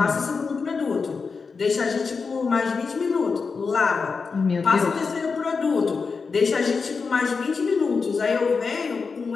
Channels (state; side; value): quieter; right; 4.9 dB